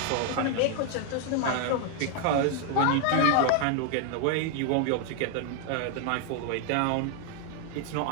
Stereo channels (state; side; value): different; both; correlation 0.00